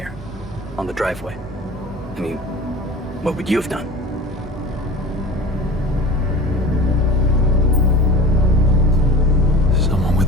on the driveway. I mean, what would you have done? Someone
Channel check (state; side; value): normal; both; correlation 0.37